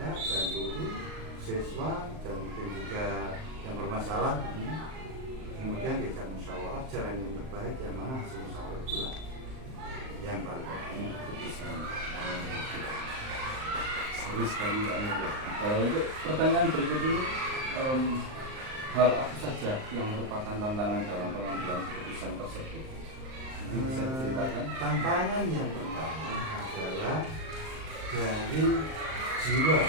dan guru, siswa dan mungkin juga yang bermasalah, kemudian diajak musyawarah jalan yang terbaik yang mana hasil musyawarah itulah yang baru keputusan. Seru sekali Pak Nur ya. Untuk pertanyaan berikut ini, hal apa saja yang merupakan tantangan dalam pengambilan keputusan tersebut? Mungkin bisa diceritakan? Tantangan yang pertama adalah dari jiwa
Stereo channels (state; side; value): late; left; 38 ms